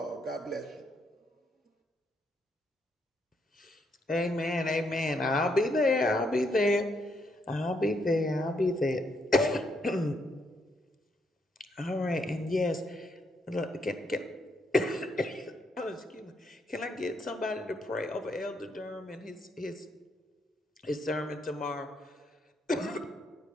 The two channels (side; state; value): both; normal; correlation 0.75